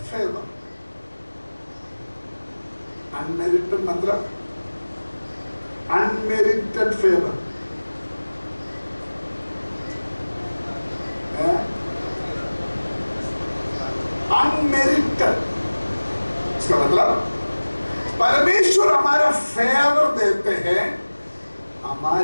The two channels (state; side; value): inverted; both; correlation -1.00